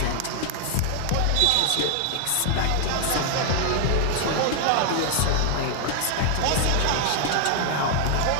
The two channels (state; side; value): different; both; correlation 0.00